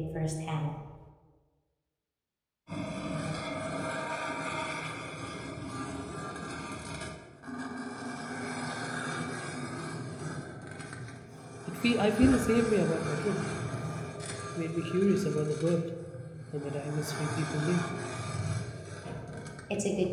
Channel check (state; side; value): identical; both; correlation 1.00